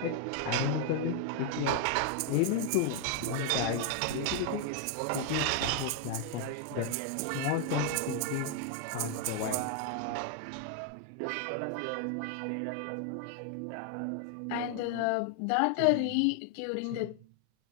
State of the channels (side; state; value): both; different; correlation 0.00